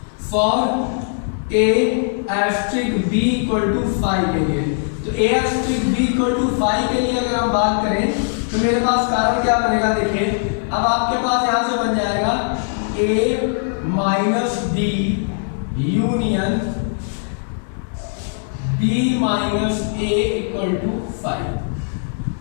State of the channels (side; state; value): right; silent; digital silence